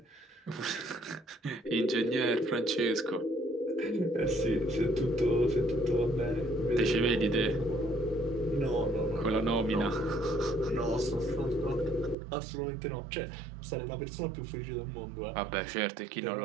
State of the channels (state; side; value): drops out; left; at 12.2 s